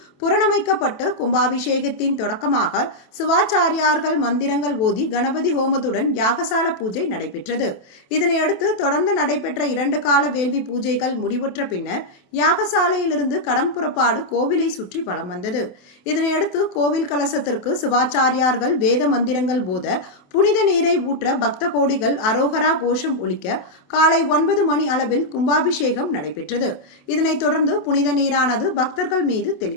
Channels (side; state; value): right; late; 28 ms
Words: புரணமைக்கப்பட்டு கும்பாபிஷேகத்தின் தொடக்கமாக சிவாச்சாரியார்கள் மந்திரங்கள் ஓதி கணபதி ஹோமத்துடன் யாகசால பூஜை நடைபெற்றது. இதனையடுத்து தொடர்ந்து நடைபெற்ற 2 கால வேள்வி பூஜைகள் முடிவுற்ற பின்னர் யாகசாலையிலிருந்து கடம் புறப்பாடு கோவிலை சுற்றி வலம் வந்தது. இதனையடுத்து கோவில் கலசத்திற்கு சிவாச்சாரியார்கள் வேத மந்திரங்கள் போத புனித நீரை ஊற்ற பக்த கோடிகள் அரோகரா கோஷம் ஒலிக்க காலை 9 மணி அளவில் கும்பாபிஷேகம் நடைபெற்றது. இதனைத் தொடர்ந்து புனித நீரானது பக்தர்கள் மீது